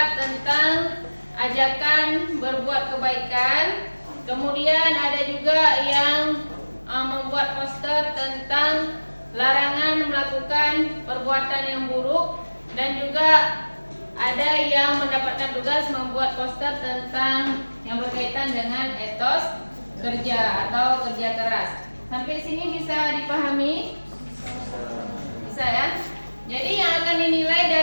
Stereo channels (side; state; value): both; inverted; correlation -1.00